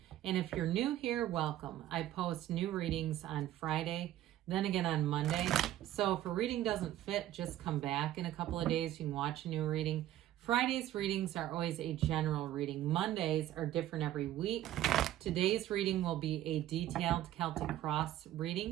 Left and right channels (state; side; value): quieter; left; 13.4 dB